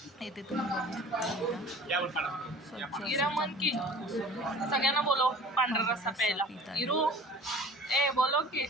इथे तुम्ही बघू शकता इरा सगळ्यांना बोलो पांढरा रस्सा प्यायला. इरू ए बोलो की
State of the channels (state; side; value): normal; both; correlation 0.44